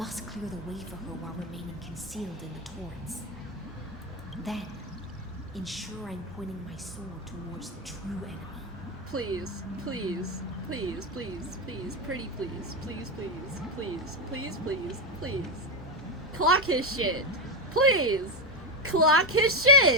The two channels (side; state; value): both; normal; correlation 0.11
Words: clear the way for her while remaining concealed in the torrents. Then, ensure I'm pointing my sword towards the true enemy. Please, please, please, please, please, pretty please, please, please, please, please, please, please. Clock his shit. Please! Clock his